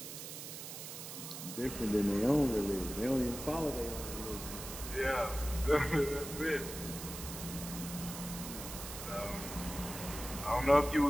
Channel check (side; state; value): right; noise; hiss, 9 dB below the sound